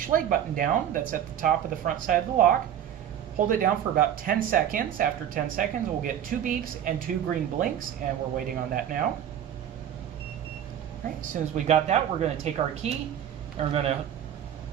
button down that's at the top of the front side of the lock. Hold it down for about 10 seconds. After 10 seconds, we'll get 2 beeps and 2 green blinks, and we're waiting on that now. All right, as soon as we got that, we're going to take our key and we're going to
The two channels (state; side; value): quieter; left; 10.0 dB